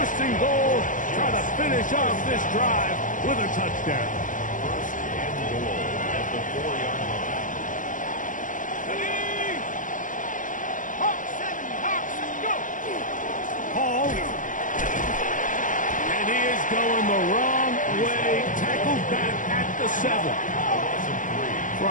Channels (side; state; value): right; late; 0.38 ms